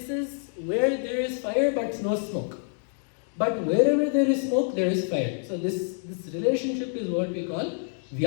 where there is fire but no smoke. But wherever there is smoke, there is fire. So this relationship is what we call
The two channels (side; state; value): right; silent; 60 dB below the other